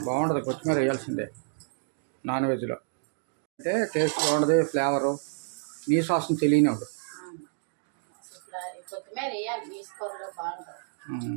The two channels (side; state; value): left; silent; digital silence